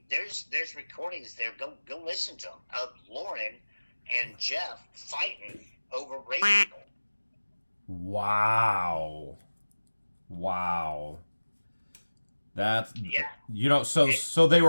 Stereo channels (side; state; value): both; inverted; correlation -1.00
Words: there's recordings there. Go listen to them of Lauren and Jeff fighting over race people. Wow. That's so